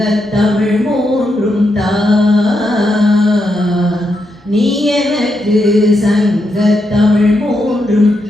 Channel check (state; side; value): normal; both; correlation 0.83